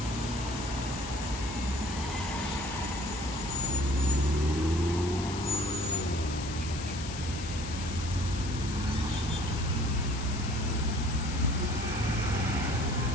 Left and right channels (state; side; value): noise; left; hiss, 10 dB below the sound